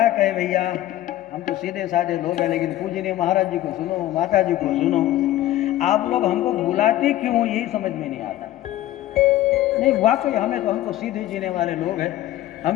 कहे भैया, हम तो सीधे साधे लोग हैं, लेकिन पूजनीय महाराज जी को सुनो, माता जी को सुनो। आप लोग हमको बुलाते क्यों हो, यही समझ में नहीं आता। नहीं वाकई हम तो सीधे जीने वाले लोग हैं,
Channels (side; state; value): right; quieter; 14.4 dB